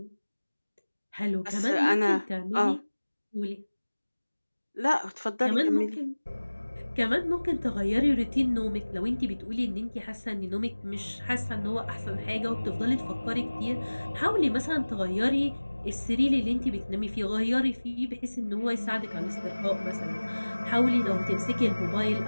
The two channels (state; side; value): inverted; both; correlation -1.00